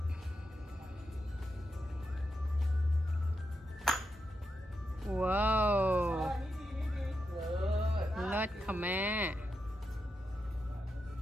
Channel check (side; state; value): both; normal; correlation 0.86